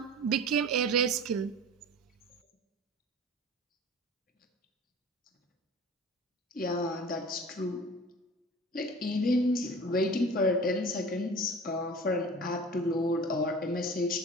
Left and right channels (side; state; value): both; normal; correlation 0.39